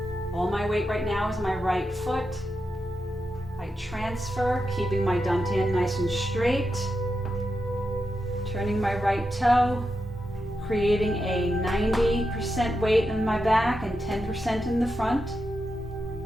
All my weight right now is my right foot. I transfer, keeping my dantian nice and straight. Turning my right toe, creating a 90% weight in my back and 10% in the front.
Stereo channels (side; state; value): both; normal; correlation 0.88